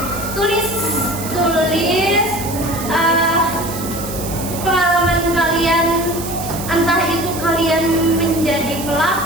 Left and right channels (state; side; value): noise; right; hiss, 10 dB below the sound